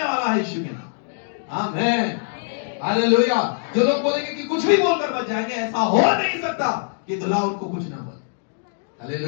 वाला है यीशु के नाम। आमीन, हालेलुया। जो लोग बोलेंगे कि कुछ भी बोलकर बच जाएंगे, ऐसा हो नहीं सकता कि दुल्हा उनको कुछ ना बोले।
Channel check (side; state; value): right; silent; digital silence